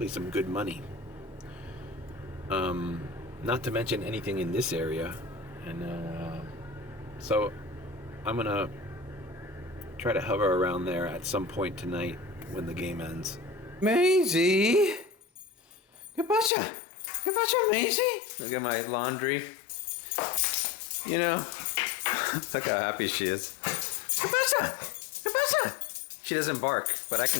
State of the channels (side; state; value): right; drops out; at 16.5 s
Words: some good money. Not to mention anything in this area. And so I'm gonna try to hover around there at some point tonight when the game ends. Maisie! ¿Qué pasa? ¿Qué pasa, Maisie? Look at my laundry. You know, look how happy she is. ¿Qué pasa? ¿Qué pasa? She doesn't bark, but I